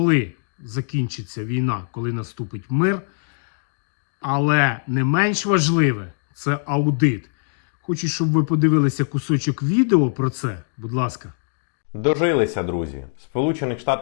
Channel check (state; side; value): silent; right; digital silence